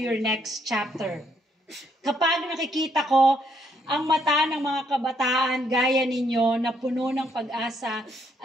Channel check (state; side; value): normal; both; correlation 0.72